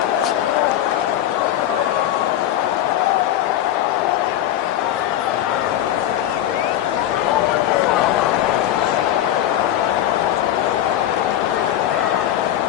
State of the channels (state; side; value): quieter; right; 12.1 dB